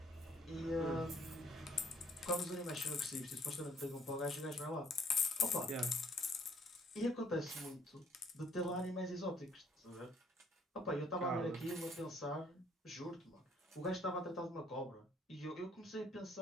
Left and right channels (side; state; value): both; normal; correlation 0.62